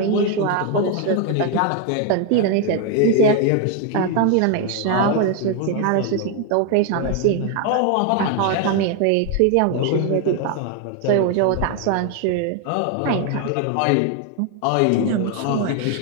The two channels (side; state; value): both; different; correlation 0.01